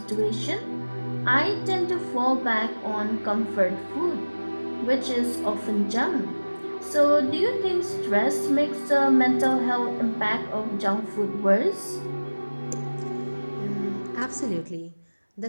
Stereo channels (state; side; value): inverted; both; correlation -1.00